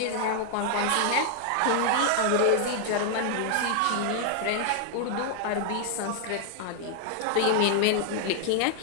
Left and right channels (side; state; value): both; different; correlation 0.00